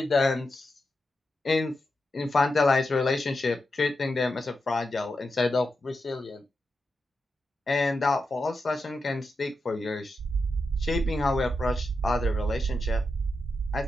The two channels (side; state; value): both; normal; correlation 0.87